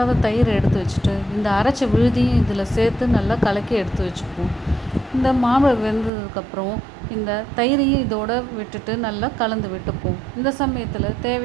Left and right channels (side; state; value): left; drops out; at 6.1 s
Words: தயிரை எடுத்து வச்சுட்டு இந்த அரைச்ச விழுதியும் இதில் சேர்த்து நல்லா கலக்கி எடுத்து வச்சுப்போம். இந்த மாம்பழம் வெந்ததுக்கப்புறம் இந்த தயிரையும் இதோடு விட்டுட்டு நல்லா கலந்து விட்டுப்போம். இந்த சமயத்தில்